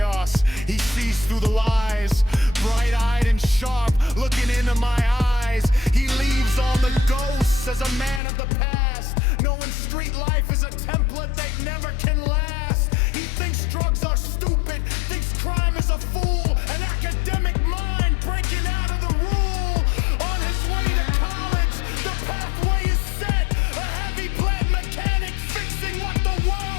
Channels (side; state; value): right; drops out; at 8.2 s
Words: he sees through the lies. Bright-eyed and sharp, looking into my eyes. He leaves all the ghosts as a man of the past, knowing street life is a template that never can last. He thinks drugs are stupid, thinks crime is a fool, an academic mind breaking out of the rule. On his way to college, the pathway is set, a heavy plant mechanic fixing what the